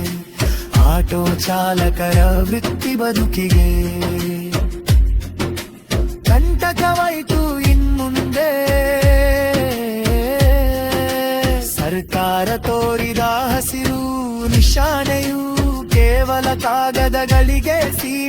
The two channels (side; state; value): both; identical; correlation 1.00